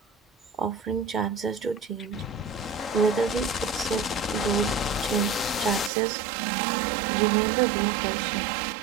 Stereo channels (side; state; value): left; drops out; at 5.9 s